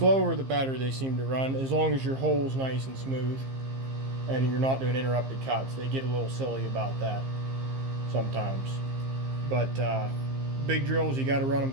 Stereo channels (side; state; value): left; late; 15 ms